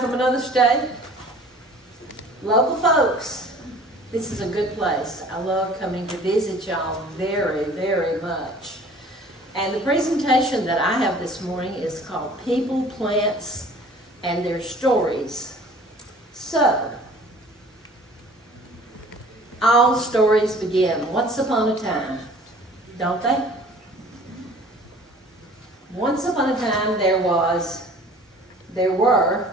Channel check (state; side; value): normal; both; correlation 0.49